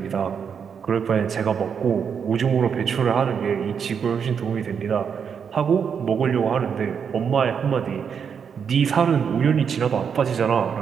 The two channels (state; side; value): quieter; left; 7.0 dB